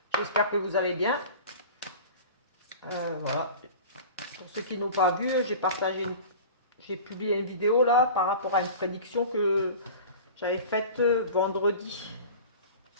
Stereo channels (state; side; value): inverted; both; correlation -0.37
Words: J'espère que vous allez bien. Voilà. Pour ceux qui n'ont pas vu, j'ai publié une vidéo là par rapport à une prédiction que j'avais faite vendredi.